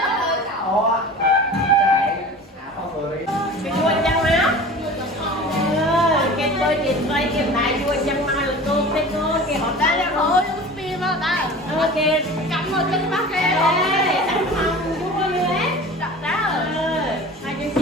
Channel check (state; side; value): normal; both; correlation 0.38